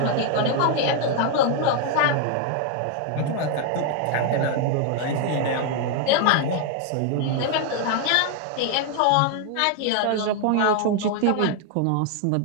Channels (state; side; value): different; both; correlation 0.00